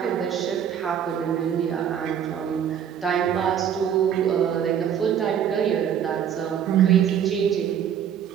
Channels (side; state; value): left; quieter; 8.8 dB